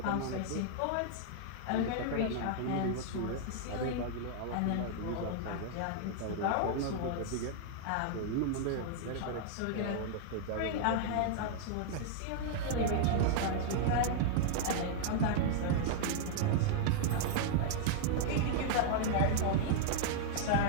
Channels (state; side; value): different; both; correlation -0.01